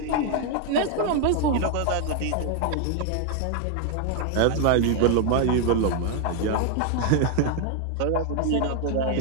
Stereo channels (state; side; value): different; both; correlation 0.00